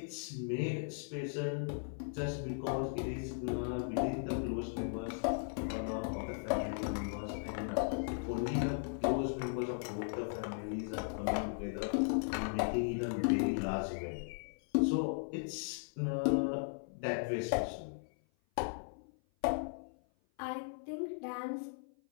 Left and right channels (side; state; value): right; silent; 53 dB below the other